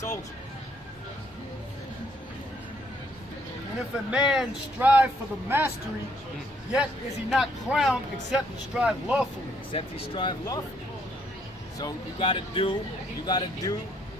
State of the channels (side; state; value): both; normal; correlation 0.68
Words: And if a man strive for the mastery, yet is he not crowned except he strive lawfully. Except he strive lawfully. So you gotta do,